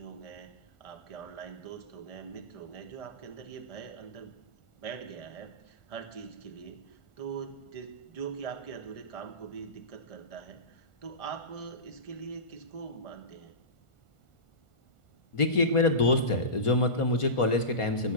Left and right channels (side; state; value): right; late; 1.4 ms